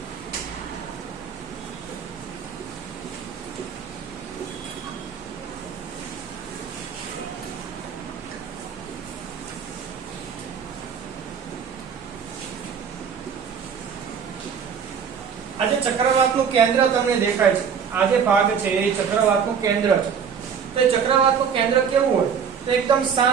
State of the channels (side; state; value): left; quieter; 7.0 dB